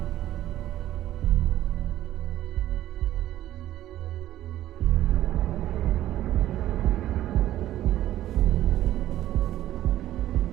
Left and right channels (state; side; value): quieter; left; 13.5 dB